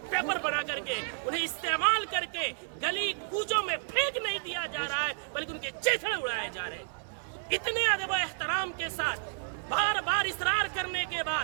پیپر بنا کر کے انہیں استعمال کر کے گلی کوچوں میں پھینک نہیں دیا جا رہا ہے بلکہ ان کے چیتھڑے اڑائے جا رہے ہیں۔ اتنے ادب و احترام کے ساتھ بار بار اصرار کرنے کے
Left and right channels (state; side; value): silent; left; digital silence